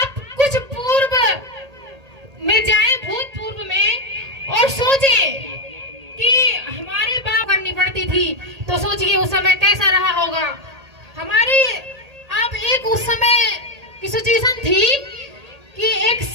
कुछ पूर्व में जाएं, भूतपूर्व में, और सोचें कि हमारे बाप करनी पड़ती थी, तो सोचिए उस समय कैसा रहा होगा। हमारी आप एक उस समय की सिचुएशन थी कि एक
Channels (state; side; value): late; left; 1.8 ms